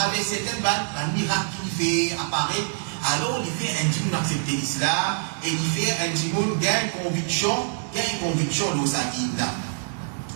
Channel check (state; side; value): silent; left; digital silence